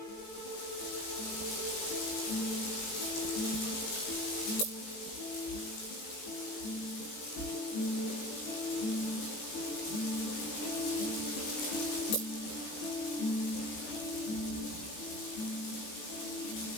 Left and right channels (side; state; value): right; late; 19 ms